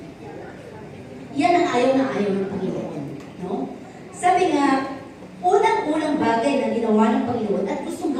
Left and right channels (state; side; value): identical; both; correlation 1.00